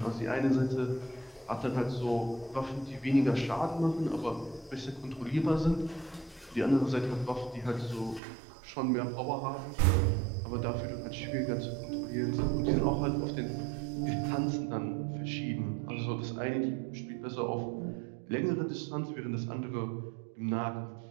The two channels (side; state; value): left; drops out; at 8.2 s